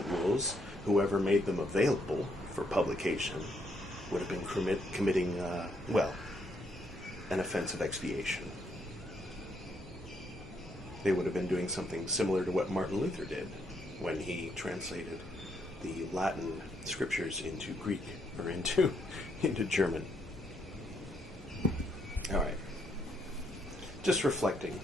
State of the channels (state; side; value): normal; both; correlation 0.74